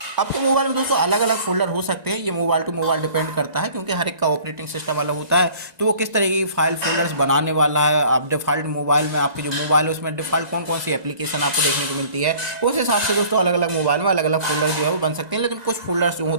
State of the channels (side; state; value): left; late; 1.9 ms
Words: आपके मोबाइल में दोस्तों अलग अलग फोल्डर हो सकते हैं, ये मोबाइल टू मोबाइल डिपेंड करता है क्योंकि हर एक का ऑपरेटिंग सिस्टम अलग होता है, तो वो किस तरीके की फाइल फोल्डर्स बनाने वाला है। आप डिफॉल्ट मोबाइल में आपके जो मोबाइल है उसमें डिफॉल्ट कौन कौन सी एप्लीकेशन आपको देखने को मिलती है, उस हिसाब से दोस्तों अलग अलग मोबाइल में अलग अलग फोल्डर जो है वो बन सकते हैं। लेकिन कुछ फोल्डर्स जो